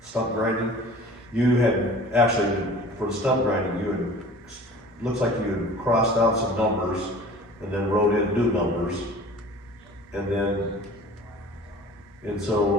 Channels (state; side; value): normal; both; correlation 0.44